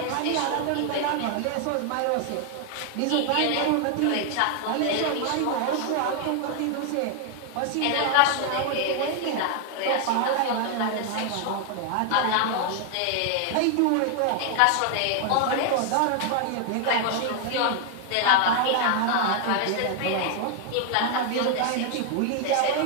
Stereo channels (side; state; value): both; different; correlation 0.00